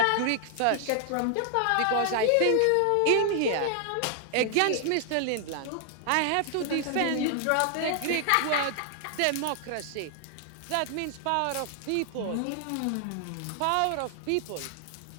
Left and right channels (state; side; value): different; both; correlation 0.00